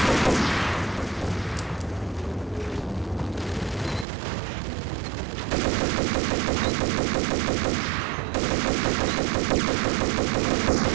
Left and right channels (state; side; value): drops out; left; at 4.0 s